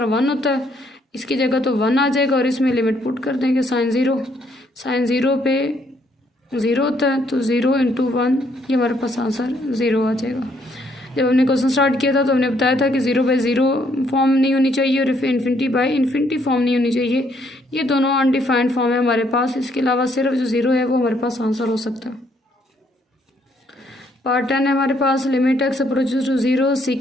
1 होता है, इसकी जगह तो 1 आ जाएगा और इसमें लिमिट पुट कर देंगे साइन 0 पे 0 होता है तो 0 इंटू 1, ये हमारे पास आंसर 0 आ जाएगा। जब हमने क्वेश्चन स्टार्ट किया था तो हमने बताया था कि 0/0 फॉर्म नहीं होनी चाहिए और इन्फिनिटी बाई इन्फिनिटी फॉर्म नहीं होनी चाहिए। ये दोनों अनडिफाइंड फॉर्म है हमारे पास, इसके अलावा सिर्फ जो 0 है वो हमारे पास आंसर हो सकता है। पार्ट 10 है हमारे पास limit x approaches to 0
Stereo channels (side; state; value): both; normal; correlation 0.69